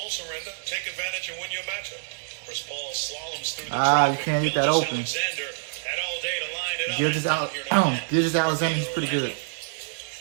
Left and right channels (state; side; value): silent; left; digital silence